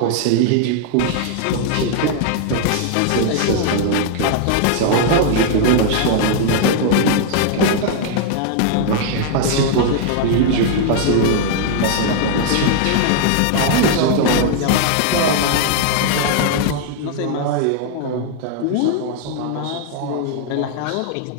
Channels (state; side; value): different; both; correlation 0.00